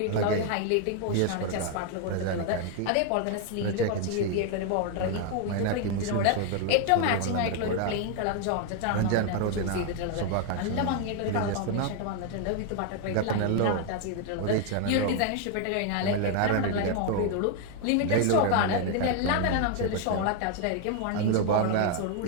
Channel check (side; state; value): both; different; correlation 0.00